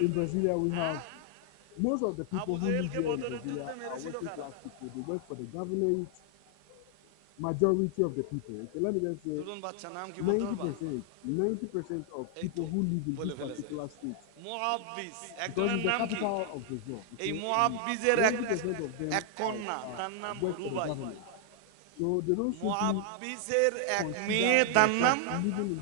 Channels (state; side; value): different; both; correlation 0.00